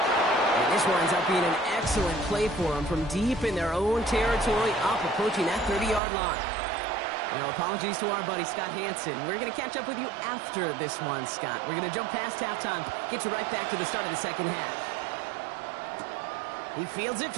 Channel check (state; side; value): drops out; left; at 6.0 s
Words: And this one ends up being an excellent play for them from deep in their own territory, up approaching that 30-yard line. Now, apologies to our buddy Scott Hansen. We're going to catch up with you after this one, Scott. We're going to jump past halftime, get you right back to the start of the second half. He fields it